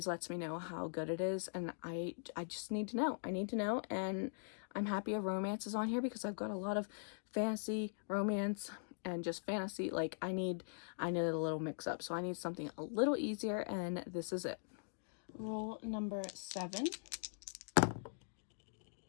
lets me know how good it is, and I just need to know. I need to know, and I'm happy a romance is on here because I've got a lot of fantasy, romance, and just fantasy. Like, I need a little mix up. So I need something a little easier, and this is it. Rule number 7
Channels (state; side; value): silent; right; digital silence